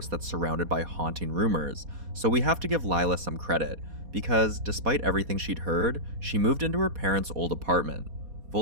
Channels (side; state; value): left; late; 4.2 ms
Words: that's surrounded by haunting rumors, so we have to give Lila some credit, because despite everything she'd heard, she moved into her parents' old apartment,